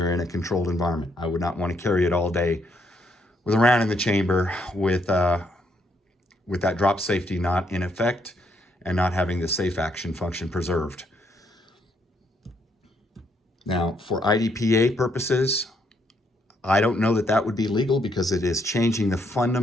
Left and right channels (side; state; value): both; normal; correlation 0.73